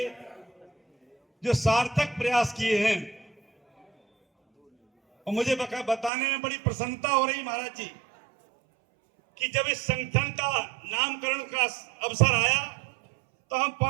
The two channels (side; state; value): left; drops out; at 6.1 s